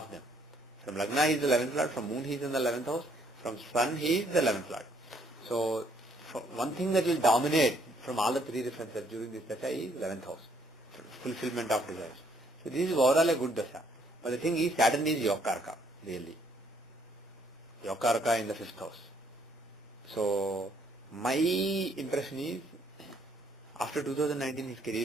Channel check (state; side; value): normal; both; correlation 0.66